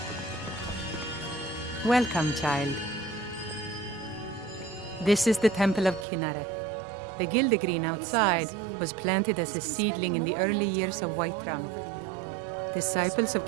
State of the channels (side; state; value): left; drops out; at 6.1 s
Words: Welcome, child. This is the Temple of Kinnareth. The Gildegreen outside was planted as a seedling in the early years of Whiterun. Disciples of